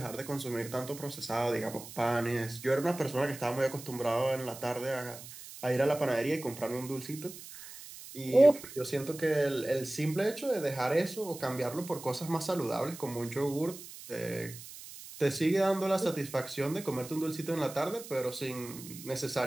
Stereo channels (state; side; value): noise; right; hiss, 14 dB below the sound